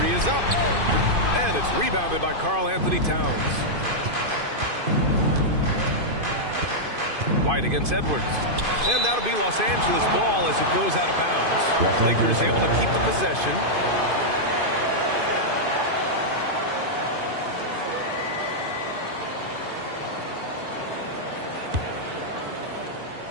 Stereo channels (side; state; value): left; late; 2.5 ms